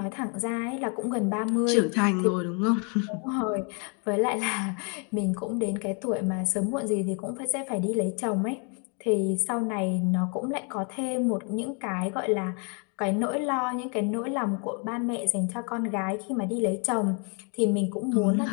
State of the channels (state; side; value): quieter; right; 37.5 dB